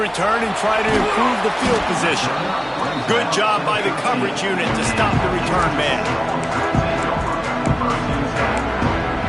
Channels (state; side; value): identical; both; correlation 1.00